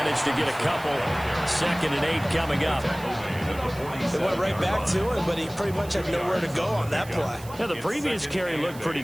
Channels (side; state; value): right; noise; hiss, 19 dB below the sound